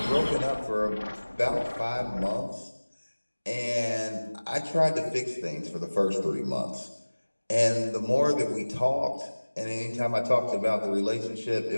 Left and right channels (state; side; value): inverted; both; correlation -1.00